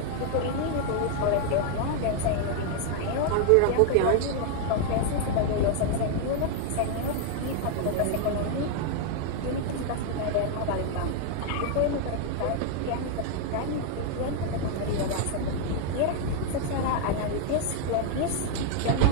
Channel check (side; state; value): both; different; correlation 0.00